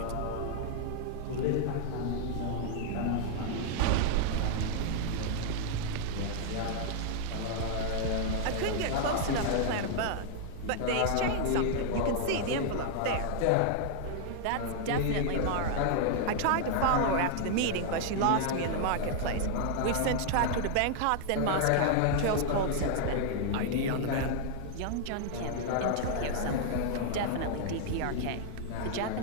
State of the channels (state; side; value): different; both; correlation 0.00